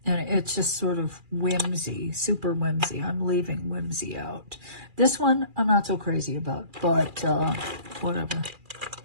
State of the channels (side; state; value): left; late; 2.4 ms